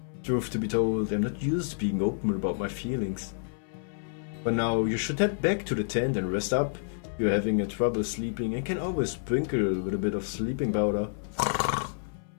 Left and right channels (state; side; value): silent; right; 57 dB below the other